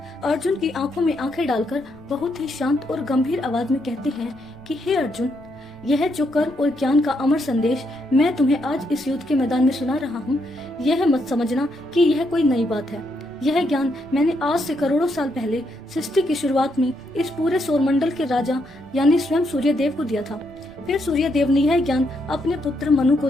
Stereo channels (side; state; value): right; noise; rumble, 24 dB below the sound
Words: अर्जुन की आंखों में आंखें डालकर बहुत ही शांत और गंभीर आवाज में कहते हैं कि हे अर्जुन, यह जो कर्म और ज्ञान का अमर संदेश मैं तुम्हें आज इस युद्ध के मैदान में सुना रहा हूँ, यह मत समझना कि यह कोई नई बात है। यह ज्ञान मैंने आज से करोड़ों साल पहले सृष्टि की शुरुआत में इस पूरे सौरमंडल के राजा यानी स्वयं सूर्य देव को दिया था। फिर सूर्य देव ने यह ज्ञान अपने पुत्र मनु को